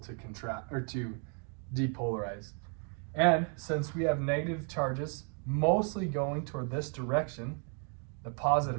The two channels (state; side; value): quieter; left; 39.2 dB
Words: contract or to depolarize. And since we have negative charges mostly going toward this direction, the